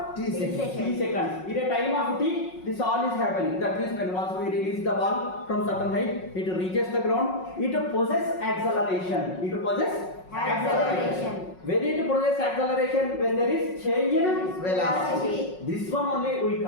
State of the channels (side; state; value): right; late; 5.5 ms